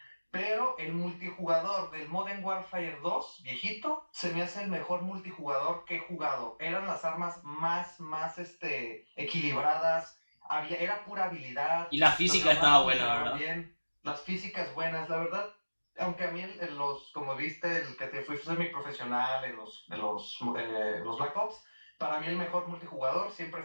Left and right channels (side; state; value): both; inverted; correlation -1.00